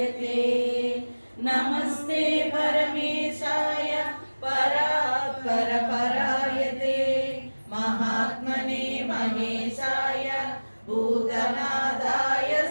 ते नमस्ते परमेशाय परात्पर पराय ते महात्मने महेशाय भूतनादाय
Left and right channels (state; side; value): inverted; both; correlation -1.00